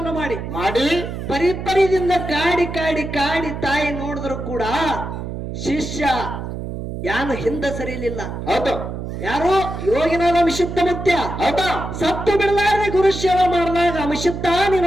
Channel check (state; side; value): noise; right; hum, 7 dB below the sound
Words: ಮಾಡಿ ಪರಿಪರಿದಿಂದ ಕಾಡಿ ಕಾಡಿ ಕಾಡಿ ತಾಯಿ ನೋಡಿದ್ರು ಕೂಡ ಶಿಷ್ಯ ಯಾನು ಹಿಂದೆ ಸರಿಲಿಲ್ಲ. ಹೌದು ಯಾರು? ಯೋಗಿನಾದ ಅಭಿಷಿಕ್ತ ಮುತ್ಯ. ಹೌದಾ ಸತ್ತು ಬಿಡಲಾರದೆ ಗುರು ಸೇವೆ ಮಾಡಿದಾಗ ಅಭಿಷಿಕ್ತ